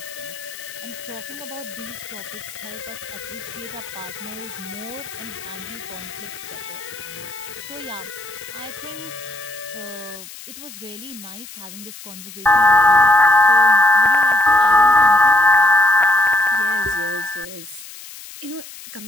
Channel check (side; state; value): left; noise; hiss, 15 dB below the sound